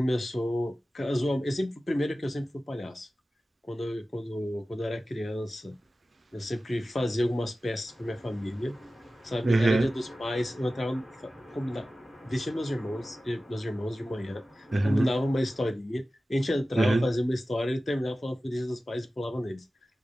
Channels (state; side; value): normal; both; correlation 0.95